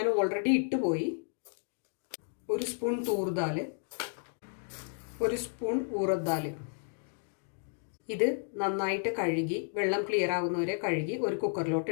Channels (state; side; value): silent; right; 56 dB below the other